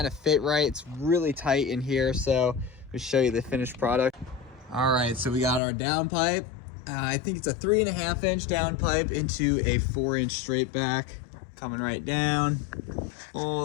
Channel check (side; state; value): right; drops out; at 5.6 s